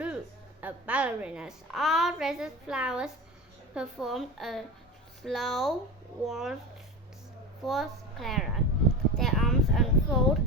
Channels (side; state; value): both; normal; correlation 0.27